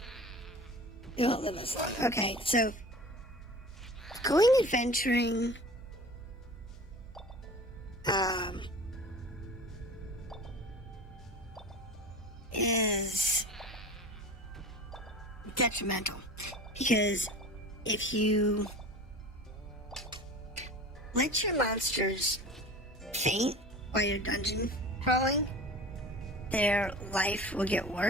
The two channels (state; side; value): normal; both; correlation 0.38